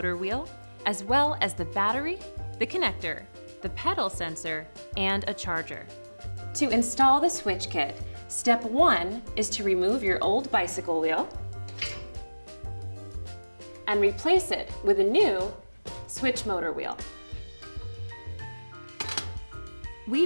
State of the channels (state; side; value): inverted; both; correlation -1.00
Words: wheel, as well as the battery, the connector, the pedal sensor, and a charger. To install the Swytch kit, step 1 is to remove your old bicycle wheel and replace it with a new Swytch motor wheel.